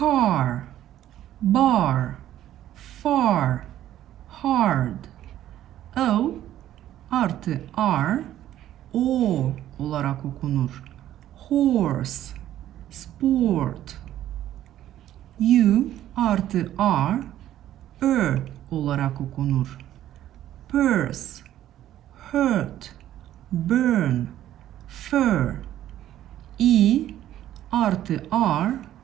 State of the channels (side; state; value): left; quieter; 12.5 dB